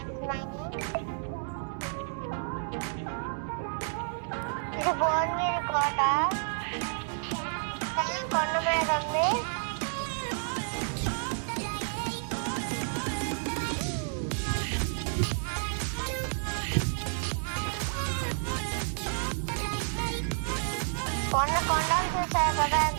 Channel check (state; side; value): silent; left; 57 dB below the other